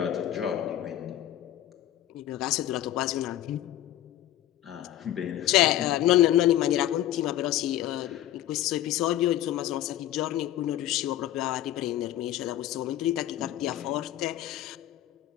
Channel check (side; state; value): right; quieter; 13.1 dB